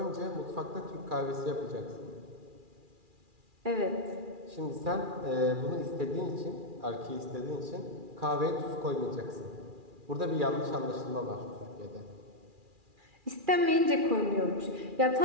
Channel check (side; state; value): left; late; 2.4 ms